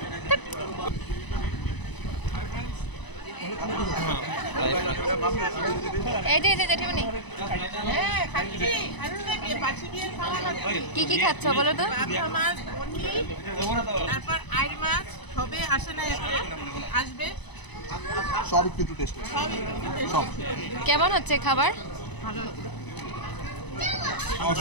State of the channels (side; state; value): right; late; 1.0 ms